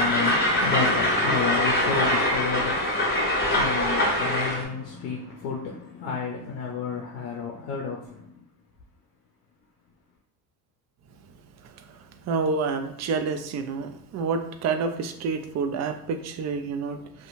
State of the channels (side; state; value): both; normal; correlation -0.04